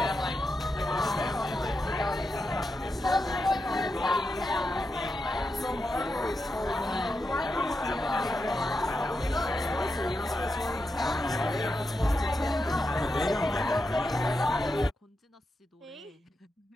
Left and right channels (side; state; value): both; normal; correlation 0.87